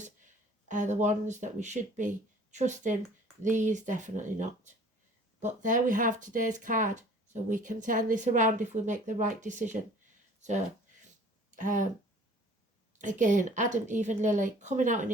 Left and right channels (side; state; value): both; normal; correlation 0.50